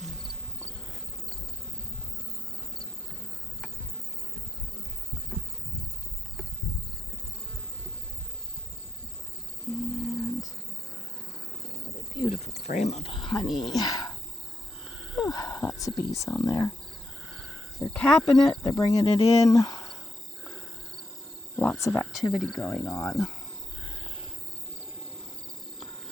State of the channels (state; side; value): normal; both; correlation 0.81